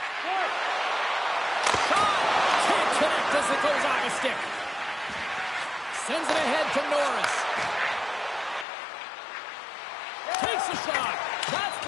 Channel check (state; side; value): drops out; right; at 8.7 s